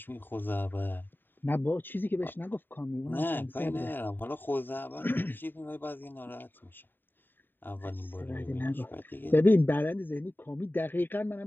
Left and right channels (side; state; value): right; late; 0.093 ms